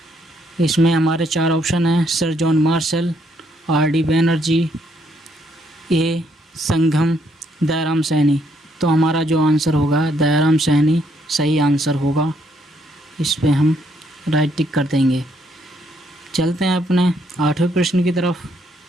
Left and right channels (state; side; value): normal; both; correlation 0.72